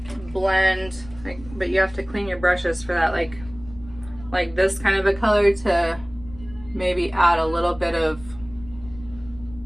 blend, but you have to clean your brushes for that, like this kind of a color to maybe add a little bit of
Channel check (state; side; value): noise; left; rumble, 18 dB below the sound